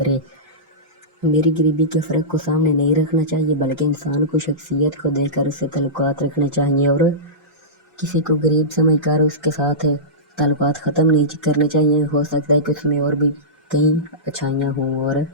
मेरी गरीबी के फ़र्क को सामने नहीं रखना चाहिए बल्कि इंसान को शख्सियत को देखकर उससे ताल्लुकात रखने चाहिए और किसी को गरीब समझकर उसके साथ ताल्लुकात ख़त्म नहीं करने चाहिए। हो सकता है कि उसमें और भी कई अच्छाइयाँ हों और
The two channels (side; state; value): both; normal; correlation -0.18